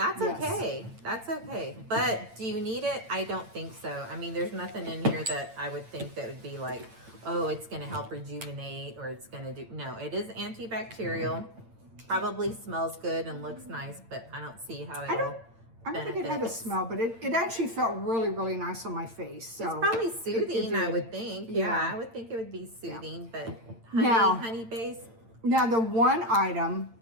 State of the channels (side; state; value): left; late; 8.8 ms